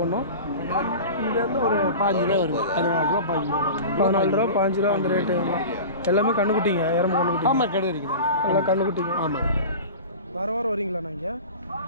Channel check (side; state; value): both; inverted; correlation -0.34